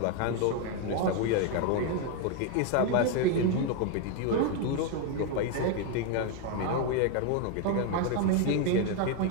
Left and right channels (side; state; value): both; different; correlation 0.01